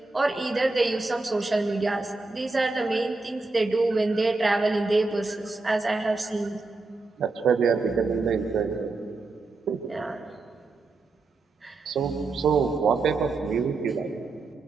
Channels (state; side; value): quieter; left; 3.6 dB